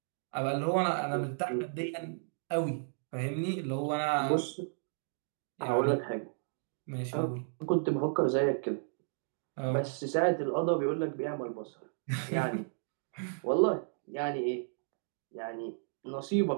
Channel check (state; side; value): silent; left; digital silence